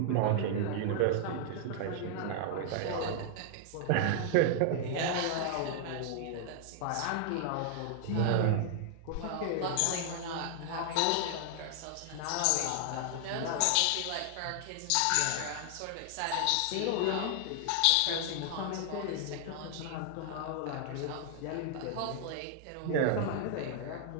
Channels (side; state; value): both; different; correlation 0.00